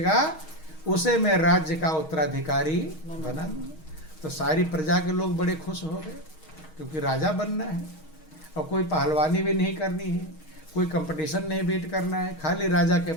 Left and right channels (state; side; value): late; right; 6.4 ms